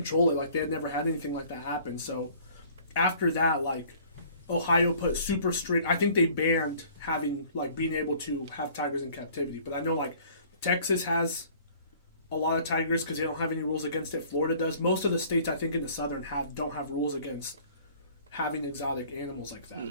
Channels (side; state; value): both; inverted; correlation -0.53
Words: it, like they had never had anything like that happen. So after that, like Ohio put super strict. I think they banned having like being able to have tigers in captivity. But I know like Texas has a lot of tigers because they don't have any rules against it. Florida does. Most of the states I think in the southern don't have rules against having exotic animals like